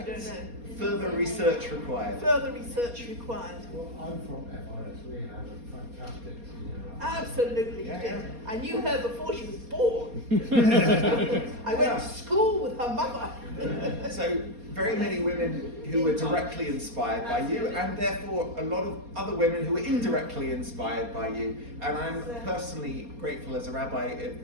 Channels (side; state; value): left; late; 4.2 ms